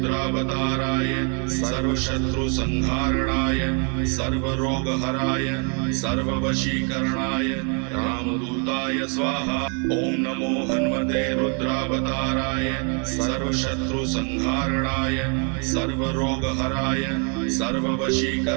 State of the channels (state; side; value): quieter; left; 37.7 dB